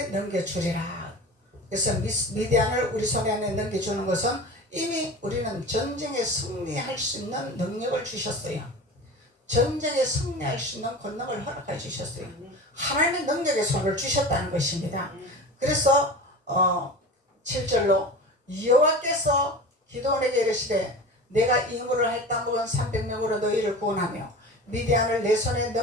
넘겨주리라. 그래서 미디안을 우리 손에 넘겨주는 것은 이미 우리는 전쟁에 승리할 수 있는 능력을 주셨어요. 전쟁에 승리할 수 있는 권능을 허락해 주셨어요. 하나님의 능력의 손을 주셨다는 것입니다. 그래서 7절로 여호와께서 기드온에게 이르시되 내가 임무를 할다 먹은 300명으로 너희를 구원하며 미디안을 내 손에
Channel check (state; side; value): normal; both; correlation 0.34